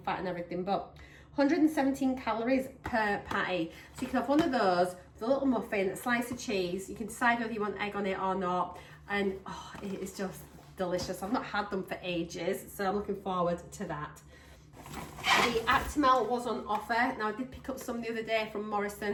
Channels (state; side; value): identical; both; correlation 1.00